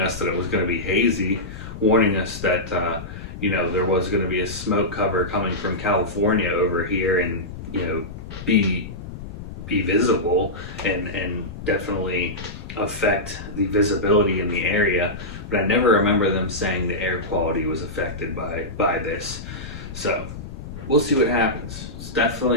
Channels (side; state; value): left; noise; rumble, 11 dB below the sound